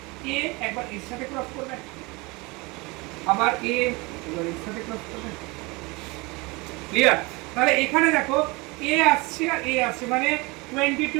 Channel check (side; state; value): left; quieter; 25.2 dB